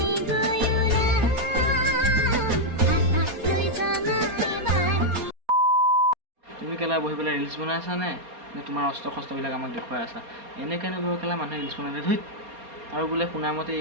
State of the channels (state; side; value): late; left; 4.3 ms